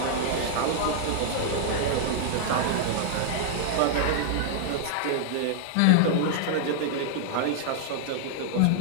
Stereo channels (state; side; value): different; both; correlation -0.01